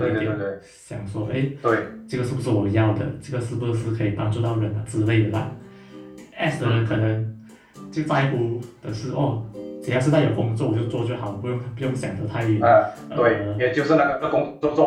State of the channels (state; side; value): identical; both; correlation 1.00